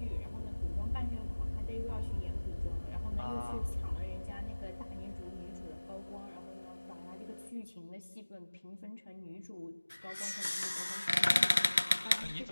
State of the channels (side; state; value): both; inverted; correlation -1.00